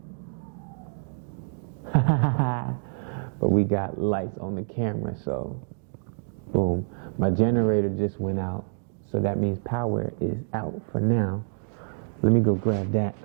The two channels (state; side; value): silent; left; digital silence